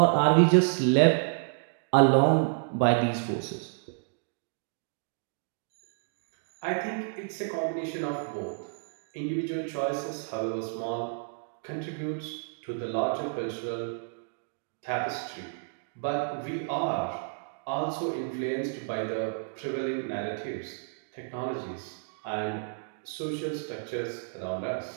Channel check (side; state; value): left; silent; digital silence